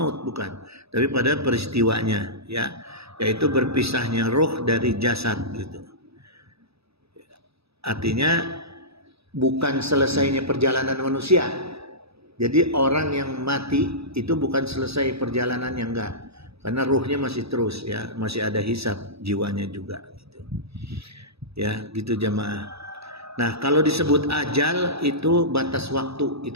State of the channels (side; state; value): left; late; 0.78 ms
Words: bukan. Tapi pada peristiwanya, ya, yaitu berpisahnya roh dari jasad gitu. Artinya bukan selesainya perjalanan manusia. Jadi orang yang mati itu bukan selesai perjalanannya, enggak. Karena ruhnya masih terus ya, masih ada hisab jiwanya juga gitu. Ya, gitu jamaah. Nah, kalau disebut ajal itu batas waktu,